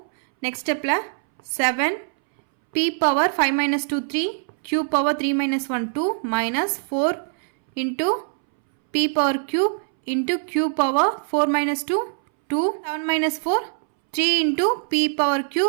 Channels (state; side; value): silent; left; 63 dB below the other